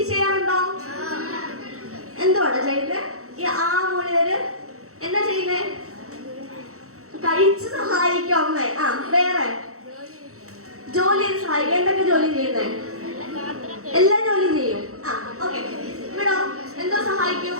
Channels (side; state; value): left; late; 0.64 ms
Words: ചെയ്യാറുണ്ടോ? എന്തുവാണ് ചെയ്യുന്നത്? ഈ മൂലര് എന്താ ചെയ്യുന്നേ? കഴിച്ച് സഹായിക്കും അമ്മേ. വേറെ ജോലി സഹായിക്കും. എന്തൊക്കെ ജോലി ചെയ്യുന്നേ? എല്ലാ ജോലിയും ചെയ്യും. ഓക്കെ, ഇവിടോ എന്തോ സഹായിക്കും?